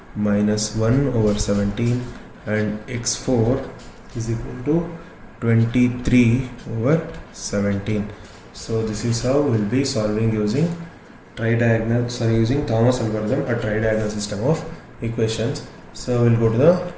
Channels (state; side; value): identical; both; correlation 1.00